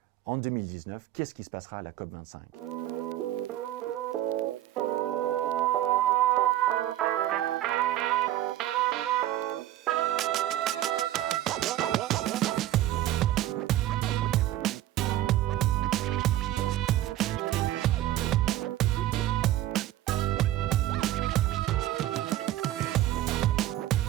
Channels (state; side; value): quieter; left; 14.0 dB